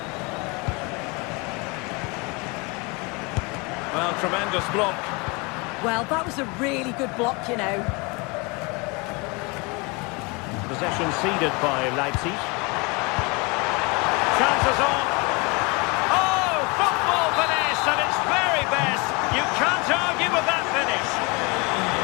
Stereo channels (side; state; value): right; quieter; 28.4 dB